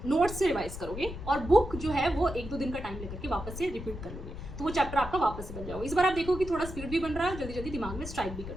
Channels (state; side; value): noise; left; rumble, 9 dB below the sound